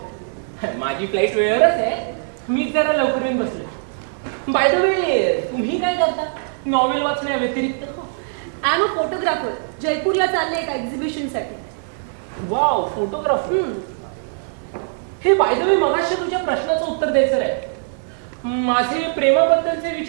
माझी फ्लाईट वेळेवरच आहे. मी जरा लवकर येऊन बसले. बाय द वे, तुम्ही काय करता नॉवेल वाचण्या व्यतिरिक्त? I am a photographer. जयपूरला चालले एका एक्झिबिशनसाठी. Wow, photographer. हे बाय द वे, मगाशी तुझ्या प्रश्नाचं उत्तर द्यायचं आहे. माझे प्रेमाबद्दलचे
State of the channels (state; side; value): silent; left; digital silence